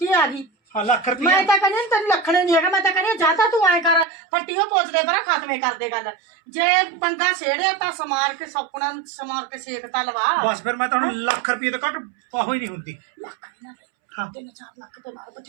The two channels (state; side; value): drops out; left; at 4.0 s